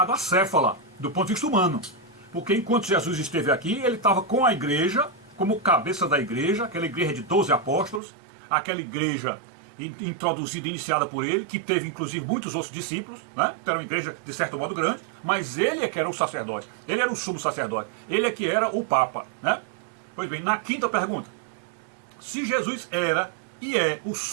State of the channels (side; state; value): left; drops out; at 8.0 s